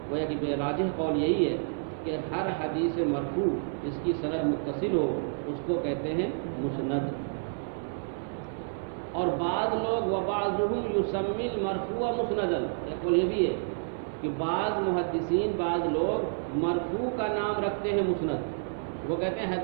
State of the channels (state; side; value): silent; left; 58 dB below the other